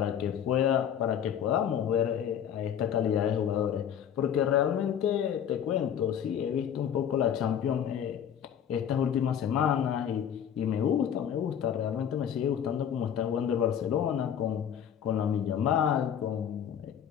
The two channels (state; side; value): quieter; right; 9.0 dB